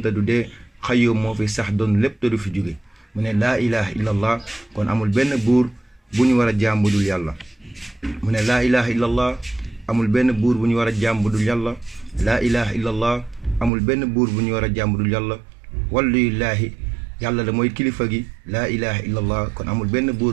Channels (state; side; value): drops out; left; at 13.7 s